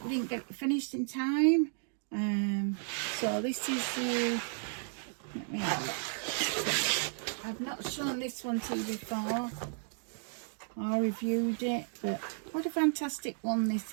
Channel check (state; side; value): silent; left; 55 dB below the other